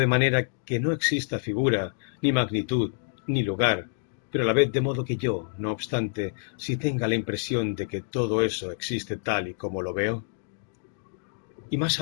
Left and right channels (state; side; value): silent; right; digital silence